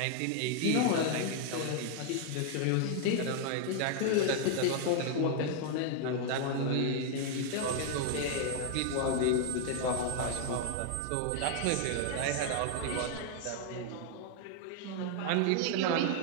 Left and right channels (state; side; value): different; both; correlation 0.00